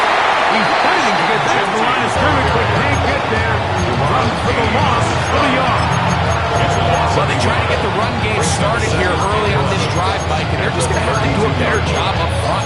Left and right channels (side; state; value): both; identical; correlation 1.00